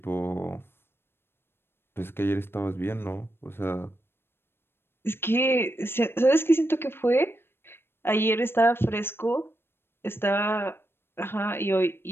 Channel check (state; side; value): late; right; 0.11 ms